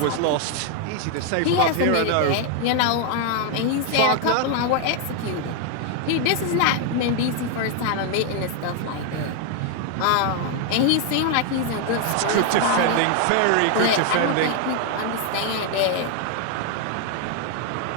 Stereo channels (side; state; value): both; different; correlation 0.00